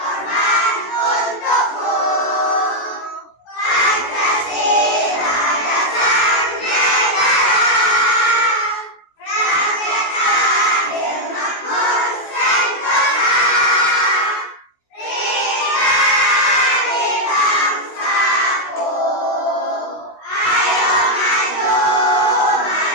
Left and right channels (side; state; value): right; late; 16 ms